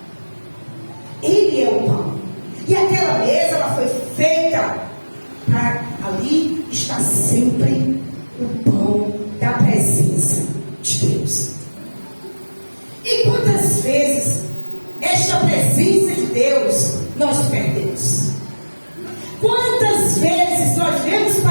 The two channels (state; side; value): inverted; both; correlation -1.00